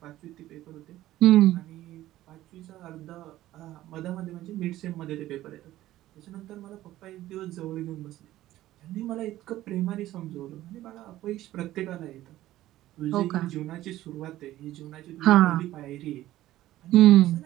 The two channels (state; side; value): quieter; left; 14.9 dB